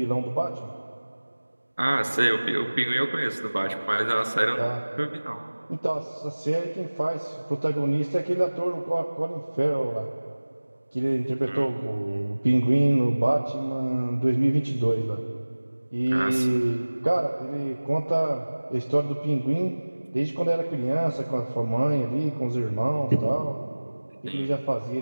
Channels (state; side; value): inverted; both; correlation -1.00